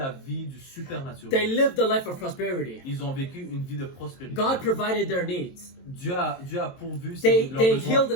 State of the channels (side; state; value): right; late; 22 ms